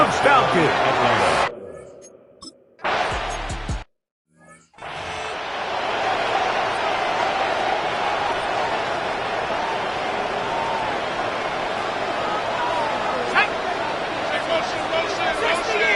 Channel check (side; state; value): both; identical; correlation 1.00